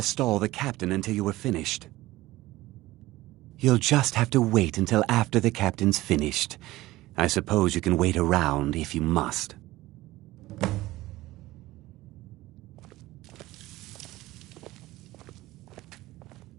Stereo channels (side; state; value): left; quieter; 17.7 dB